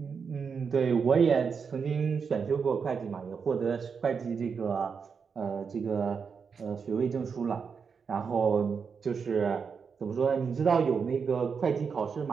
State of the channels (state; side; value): quieter; left; 5.9 dB